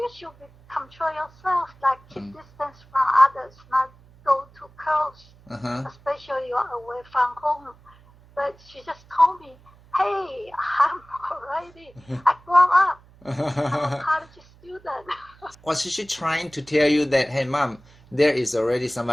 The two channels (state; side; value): noise; right; hum, 26 dB below the sound